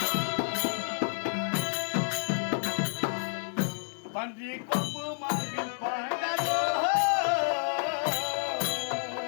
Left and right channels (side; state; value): right; silent; digital silence